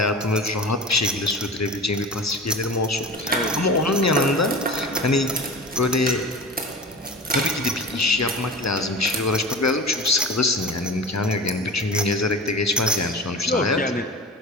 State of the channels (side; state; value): both; normal; correlation 0.32